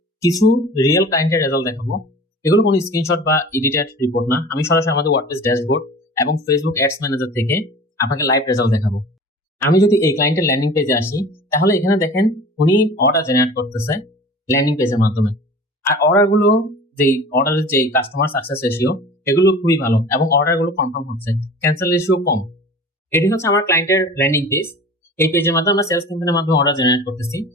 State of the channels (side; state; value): both; normal; correlation 0.40